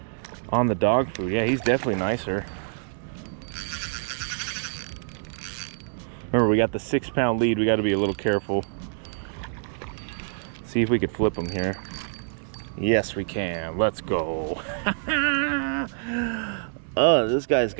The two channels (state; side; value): silent; left; digital silence